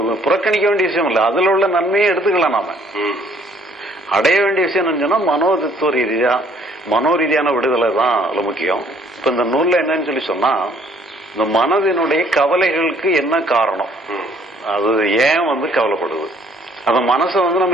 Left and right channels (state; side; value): normal; both; correlation 0.61